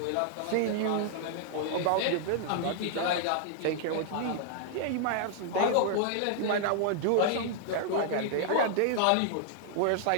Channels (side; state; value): both; different; correlation -0.01